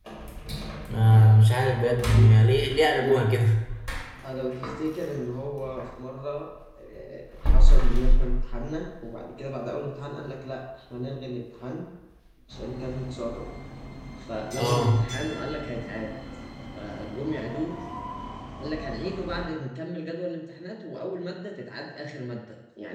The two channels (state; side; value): identical; both; correlation 1.00